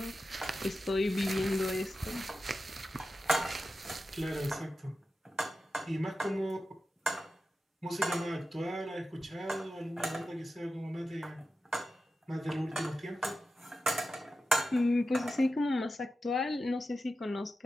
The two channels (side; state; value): both; normal; correlation 0.92